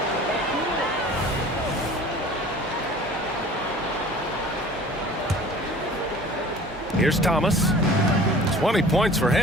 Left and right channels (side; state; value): both; normal; correlation 0.45